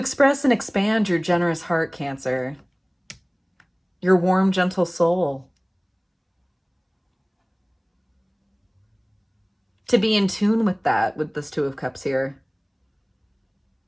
and expand your generous heart, Cancer, your warm, gentle soul. To be in tune with that, with this Two of Cups here.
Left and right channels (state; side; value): identical; both; correlation 1.00